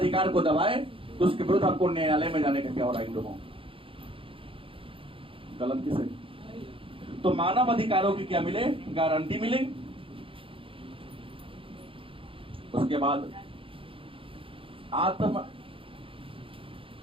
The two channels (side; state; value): left; late; 0.26 ms